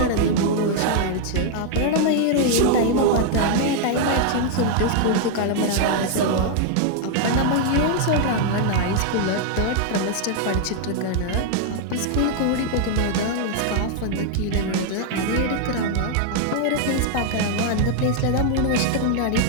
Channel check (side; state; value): both; different; correlation 0.00